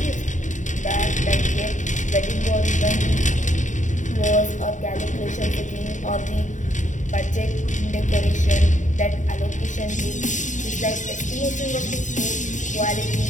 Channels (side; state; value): right; late; 0.36 ms